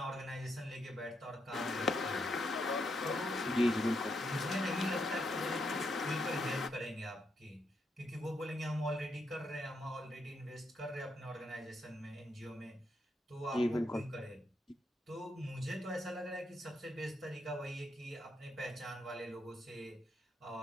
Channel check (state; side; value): normal; both; correlation 0.79